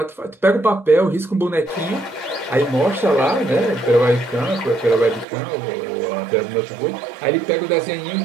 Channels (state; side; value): drops out; left; at 5.2 s